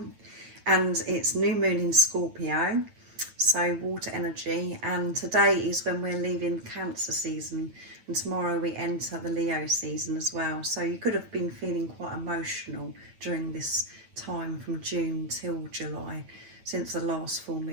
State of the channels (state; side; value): late; left; 9.0 ms